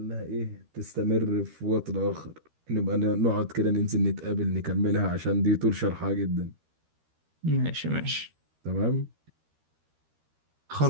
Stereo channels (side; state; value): left; late; 13 ms